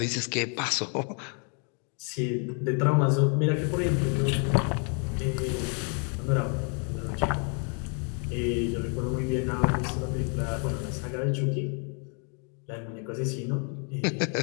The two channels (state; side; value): quieter; right; 39.8 dB